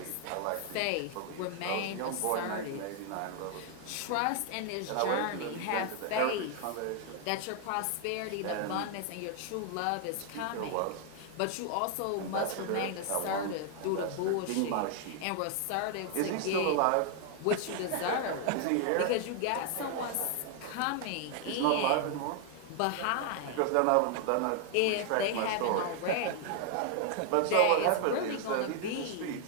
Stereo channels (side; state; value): both; different; correlation 0.00